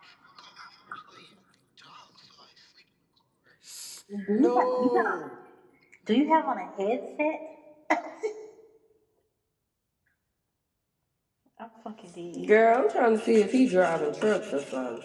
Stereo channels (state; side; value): identical; both; correlation 1.00